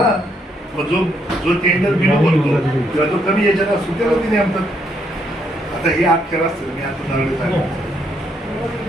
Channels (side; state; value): both; normal; correlation 0.73